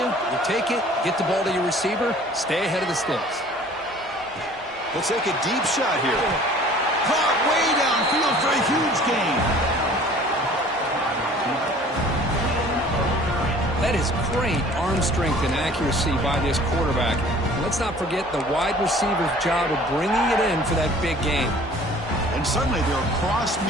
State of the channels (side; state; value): both; normal; correlation 0.50